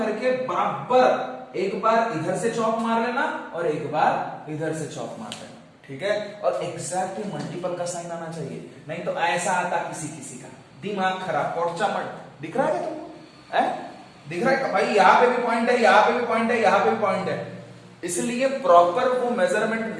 बराबर एक बार इधर से चौक मार लेना और एक बार इधर से चौक मार लेना, ठीक है। और एग्जैक्टली मल्टीपल का साइन आना चाहिए, नहीं तो ऐसा आता किसी किसी का, दिमाग खराब, पोर्चा मत। दिख रहा है क्या तुमको? दिख रहा है भाई, यहाँ पे भी पॉइंट है, यहाँ पे भी पॉइंट है, यहाँ पे भी पॉइंट है। इसलिए प्रॉपर वो मेजरमेंट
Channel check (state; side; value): identical; both; correlation 1.00